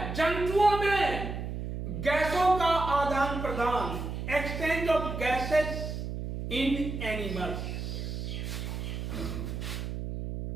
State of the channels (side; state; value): right; noise; hum, 5 dB below the sound